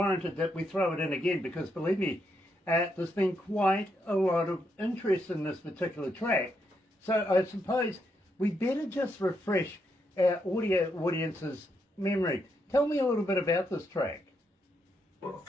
that we throw it in again because, believe me, there's been quite a lot of interest in this particular track. So I suppose we better just refresh our audio audience's memory. Tell me a little bit about this track. Well,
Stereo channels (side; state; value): both; normal; correlation 0.79